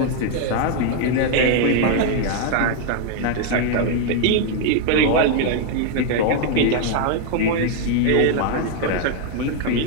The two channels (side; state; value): both; different; correlation 0.00